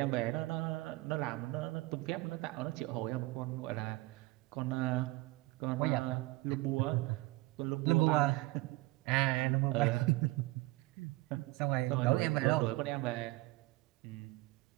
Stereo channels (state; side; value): quieter; left; 21.1 dB